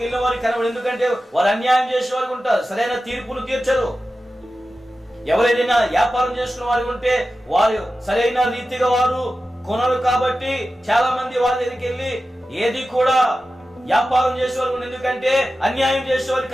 వెళ్ళిన వారికి కనబడు. ఎందుకంటే వారు అన్యాయం చేసే వారికి ఉంటారు, సరైన తీర్పును తీర్చరు. ఎవరైనా వ్యాపారం చేసుకున్న వారికి ఉంటే వారు సరైన రీతిగా వారు కొనరు. కాబట్టి చాలా మంది వారి దగ్గరికి వెళ్ళి ఏది కూడా వ్యాపారం చేసేవారు. ఎందుకంటే అన్యాయం చేసేవారు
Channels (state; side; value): normal; both; correlation 0.93